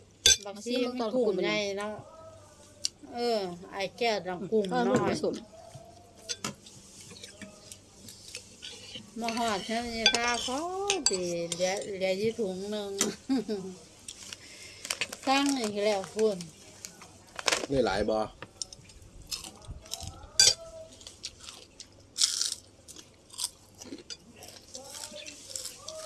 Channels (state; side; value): identical; both; correlation 1.00